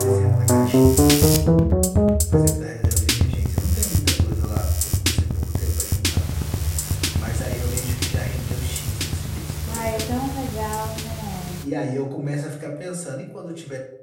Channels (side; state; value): both; identical; correlation 1.00